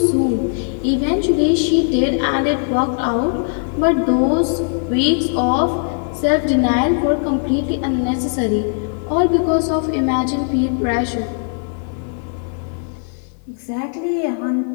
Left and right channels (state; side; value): silent; right; 67 dB below the other